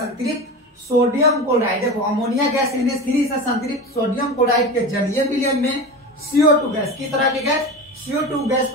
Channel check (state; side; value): normal; both; correlation 0.27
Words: सोडियम क्लोराइड। देखो अमोनिया गैस NH3 से संतृप्त सोडियम क्लोराइड के जलीय विलयन में CO2 गैस, किस तरह की गैस? CO2 गैस